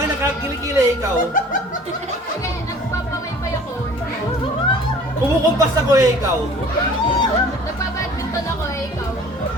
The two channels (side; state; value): both; normal; correlation 0.49